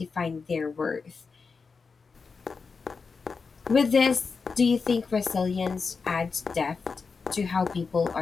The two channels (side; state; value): right; quieter; 4.9 dB